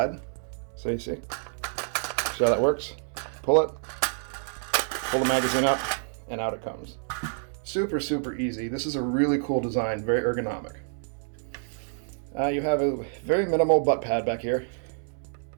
So you see how that works? Pull it, pull the magazine up, and out it comes. Super, super easy. This is a really cool design, very ergonomic. You have a very minimal butt pad back here.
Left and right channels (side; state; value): left; silent; digital silence